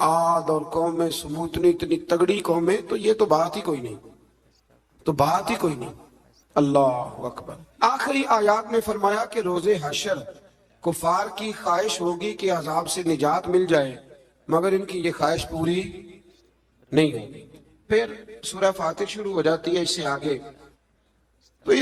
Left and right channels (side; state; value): both; identical; correlation 1.00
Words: اور قومیں سموت اتنی تگڑی قومیں، تو یہ تو بات ہی کوئی نہیں، تو بات ہی کوئی نہیں. اللہ اکبر. آخری آیات میں فرمایا کہ روز حشر کفار کی خواہش ہوگی کہ عذاب سے نجات مل جائے، مگر ان کی یہ خواہش پوری نہیں ہوگی. پھر سورہ فاتر شروع ہو جاتی ہے اس سے آگے. تو